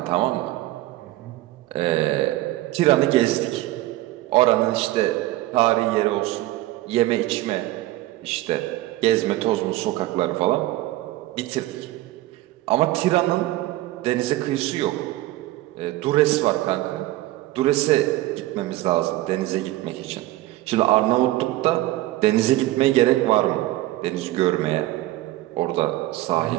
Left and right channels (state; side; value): quieter; left; 16.7 dB